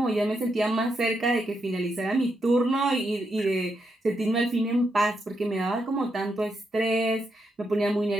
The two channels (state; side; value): normal; both; correlation 0.82